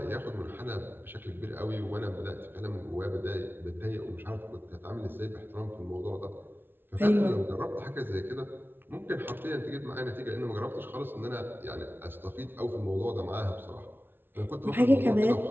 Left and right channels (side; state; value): left; late; 0.10 ms